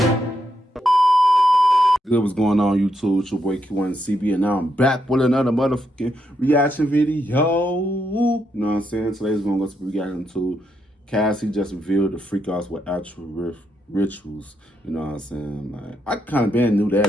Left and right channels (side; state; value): both; normal; correlation 0.80